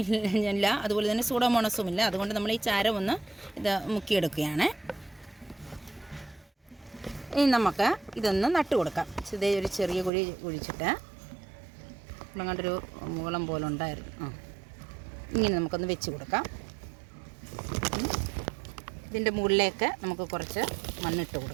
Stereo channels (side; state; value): left; drops out; at 10.1 s